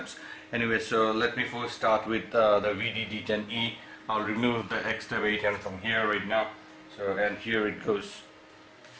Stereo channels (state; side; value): identical; both; correlation 1.00